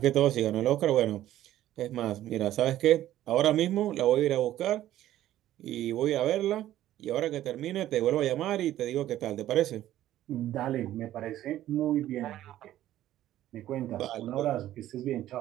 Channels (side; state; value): left; quieter; 13.3 dB